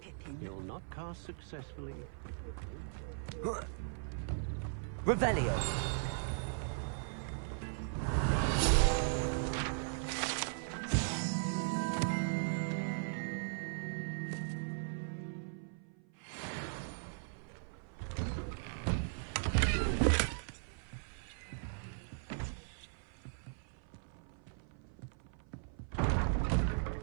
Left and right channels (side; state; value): left; silent; 52 dB below the other